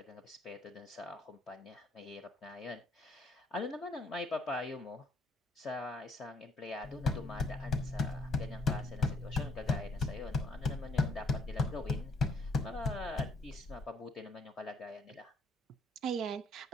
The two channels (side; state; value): both; normal; correlation 0.64